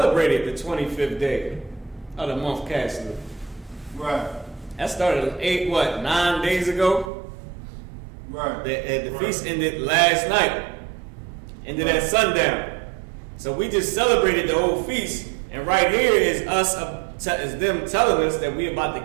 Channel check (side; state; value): left; drops out; at 7.1 s